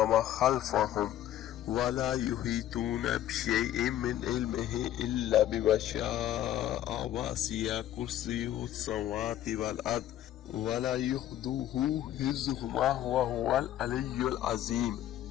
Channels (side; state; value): right; quieter; 12.4 dB